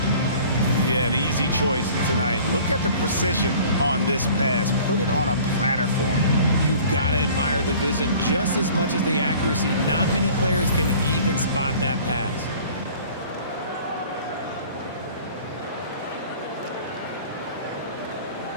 Yeah, an easy choice tonight. Look at the precision on this pass. Put it on a platter form. You've got to admire the vision just as much as the accuracy. Not many players can even spot that pass.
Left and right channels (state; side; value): inverted; both; correlation -0.48